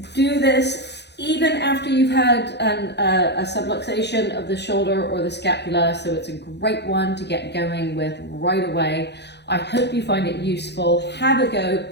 do this even after you've had a subluxation of the shoulder or the scapula, so it's a great one to get going with right away. I hope you find it useful. Have a go,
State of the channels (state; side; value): late; right; 0.50 ms